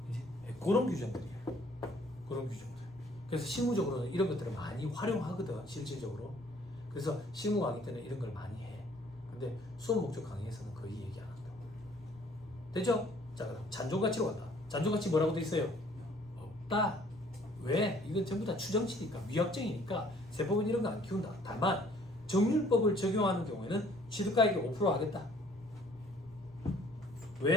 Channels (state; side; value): noise; right; rumble, 26 dB below the sound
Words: 그런 규정들이야. 그런 규정들. 그래서 실무적으로는 이런 것들을 많이 활용하거든, 실질적으로. 그래서 실무 강의 때는 이런 걸 많이 해. 근데 수업 목적 강의에서는 거의 얘기 안 한다고. 됐죠? 자, 그럼 잔존가치로 간다. 잔존가치 뭐라고 돼 있어요? 없다. 왜? 이건 전부 다 추정치니까, 위약정이니까 세법은 이런 거 안 키운다. 다만 정률법을 적용하는 경우에는 취득가액이 5% 하겠다.